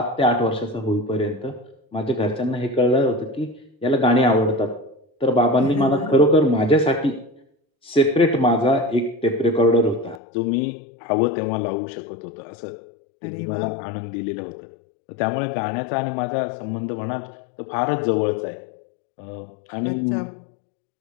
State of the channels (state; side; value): drops out; right; at 10.2 s